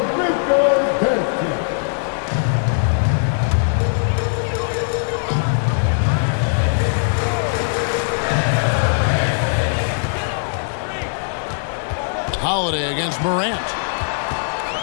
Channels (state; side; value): silent; right; digital silence